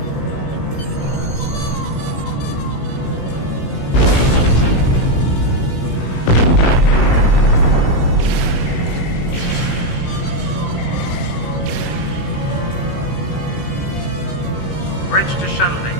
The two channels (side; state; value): right; late; 16 ms